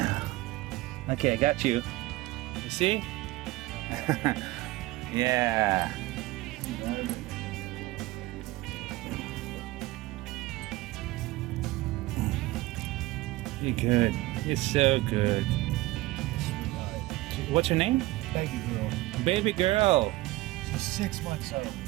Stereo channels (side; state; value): left; quieter; 19.0 dB